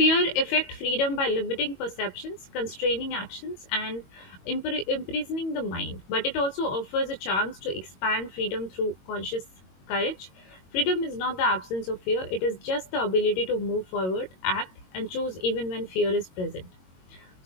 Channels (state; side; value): late; right; 22 ms